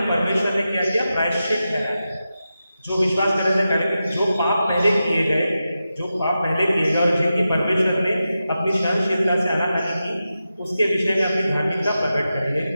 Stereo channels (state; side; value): inverted; both; correlation -0.91